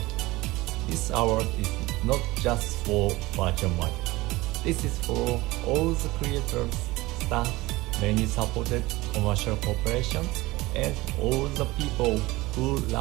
This award is not just for virtual market. This is for all the creators, staff, many supported commercial corporations, and all the people who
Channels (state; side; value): quieter; left; 20.2 dB